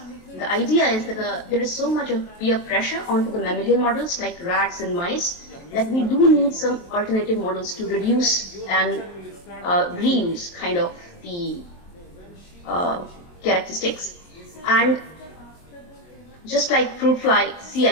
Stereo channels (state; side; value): late; right; 23 ms